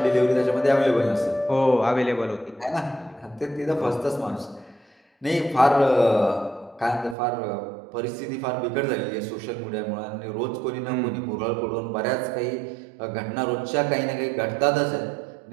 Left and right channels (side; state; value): left; drops out; at 7.2 s